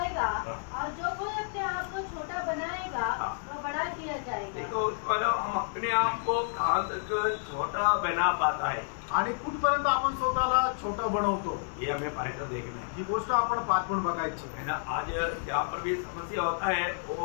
और जो कोई अपने आप को छोटा बनाएगा वह बड़ा किया जाएगा. देखो, हम अपने आप को कहाँ तक छोटा बना पाता है, आणि कुठपर्यंत आपण स्वतःला छोटं बनवतो, ये हमें पाठकर देखना है. ही गोष्ट आपण पाठवून बघायची है ना. आज जहाँ पर भी समस्या होता है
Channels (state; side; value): silent; right; digital silence